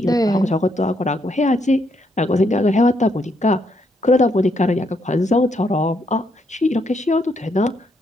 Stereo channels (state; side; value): normal; both; correlation 0.75